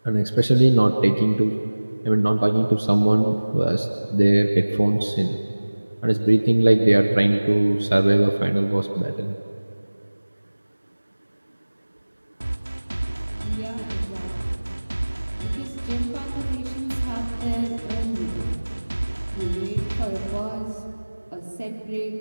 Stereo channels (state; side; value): inverted; both; correlation -1.00